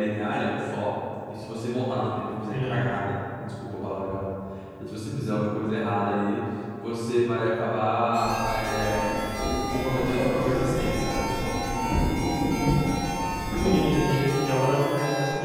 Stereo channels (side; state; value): both; identical; correlation 1.00